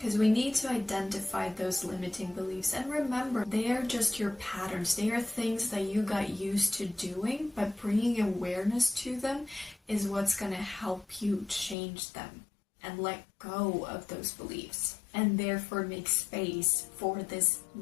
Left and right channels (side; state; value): right; drops out; at 11.8 s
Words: we need to identify those limiting beliefs, and remember, they are just your patterns. They are things that you got used to doing, but bringing awareness to them is what's going to help you change them and let go of those beliefs, and therefore make space for this